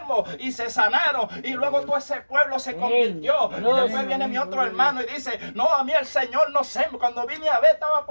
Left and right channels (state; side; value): inverted; both; correlation -1.00